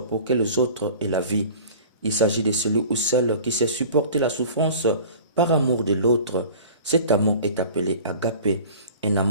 pour que les autres aient la vie. Il s'agit de celui ou celle qui sait supporter la souffrance par amour de l'autre. Cet amour est appelé agapé, un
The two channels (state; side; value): inverted; both; correlation -0.42